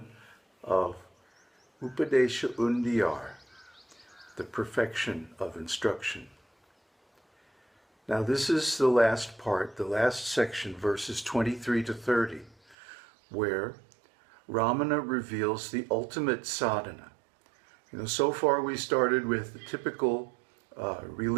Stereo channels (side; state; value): left; drops out; at 12.8 s